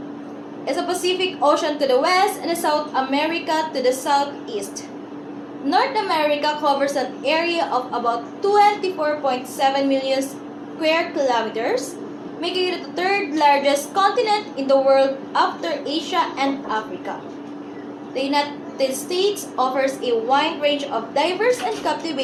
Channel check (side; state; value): both; identical; correlation 1.00